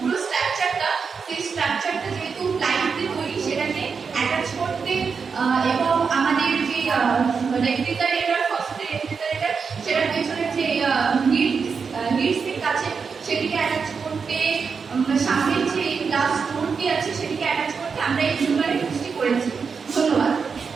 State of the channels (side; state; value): left; quieter; 5.6 dB